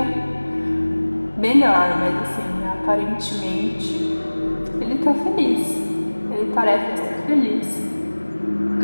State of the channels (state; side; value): inverted; both; correlation -1.00